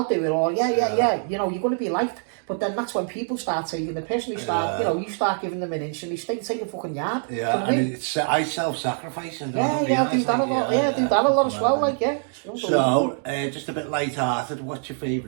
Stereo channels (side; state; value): left; silent; 60 dB below the other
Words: do it, or yeah, you know, you're going to be liked. But then that's when people start taking the piss, and they start, you know, you start giving them an inch, and they take a fucking yard. Yeah, you know and it's, I self-sacrifice. And I do that a lot. I do that a lot as well, like, yeah. So, just a bit light-hearted, what's your